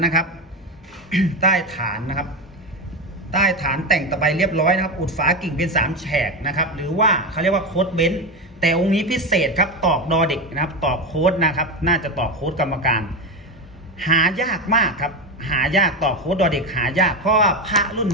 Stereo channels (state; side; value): normal; both; correlation 0.16